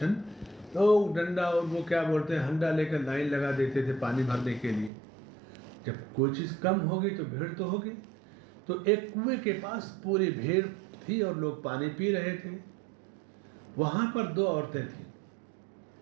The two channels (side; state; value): left; drops out; at 4.9 s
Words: لوگ ڈنڈا اور وہ کیا بولتے ہیں ہنڈا لے کر لائن لگا دیتے تھے پانی بھرنے کے لیے. جب کوئی چیز کم ہوگی تو بھیڑ تو ہوگی. تو ایک کنویں کے پاس پوری بھیڑ تھی اور لوگ پانی پی رہے تھے. وہاں پر 2 عورتیں تھیں